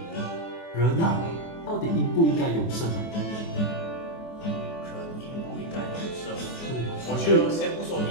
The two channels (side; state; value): right; late; 24 ms